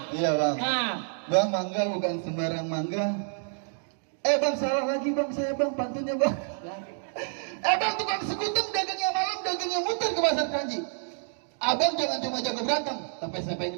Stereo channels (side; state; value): left; silent; digital silence